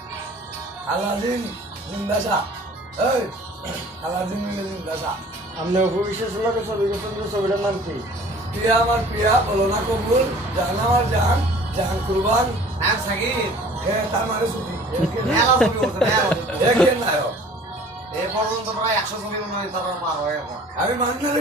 আলাদিন জিন্দাসা এই আলাদিন জিন্দাসা আপনি অভিবিশ্বাস লোকে ছবি করছেন যে ছবিটার নাম কি? প্রিয়া আমার প্রিয়া বলো না কবুল জান আমার জান জাহান কুরবান এক সাকিব হ্যাঁ তার মানে ছবি মেলা ছবি করছে মেলা দেখেন নায়ক এই পর্যন্ত প্রায় 100 ছবি মনে হয় তারা পার হয়ে গেছে আমি মান্নারে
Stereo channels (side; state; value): both; normal; correlation 0.49